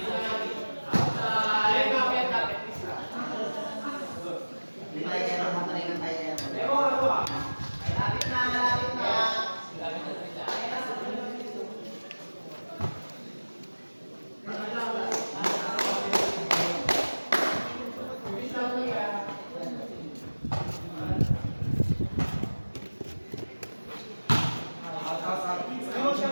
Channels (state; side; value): inverted; both; correlation -1.00